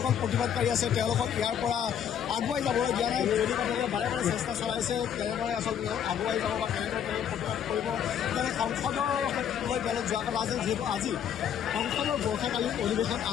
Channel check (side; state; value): right; quieter; 8.8 dB